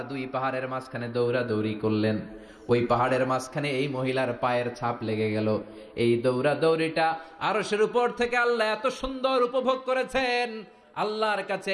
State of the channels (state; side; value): identical; both; correlation 1.00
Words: 2 পাহাড়ের মাঝখানে দৌড়াদৌড়ি করলেন। ওই পাহাড়ের মাঝখানে এই মহিলার পায়ের ছাপ লেগে গেল। এই দৌড়াদৌড়িটা আরশের উপর থেকে আল্লাহ এত সুন্দর উপভোগ করেছেন। আল্লাহর কাছে